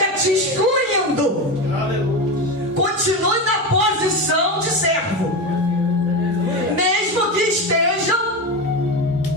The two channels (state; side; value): normal; both; correlation 0.19